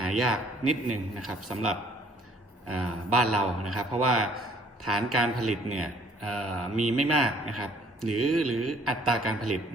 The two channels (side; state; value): both; normal; correlation 0.59